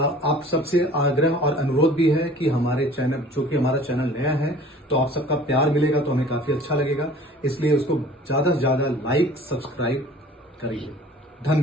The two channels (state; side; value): normal; both; correlation 0.48